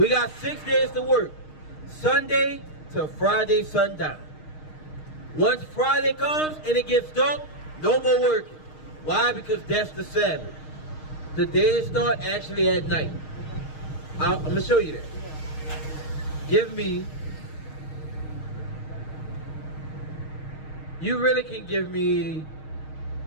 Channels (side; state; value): right; late; 6.4 ms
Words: got 6 days to work. Sunday to Friday sundown. Once Friday comes and it gets dark, no more working. Why? Because that's the Sabbath. The days start actually at night. I'm going to show you that. Give me... You really can give me...